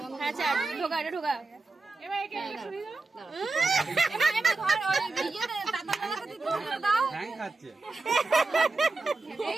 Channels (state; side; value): quieter; left; 3.6 dB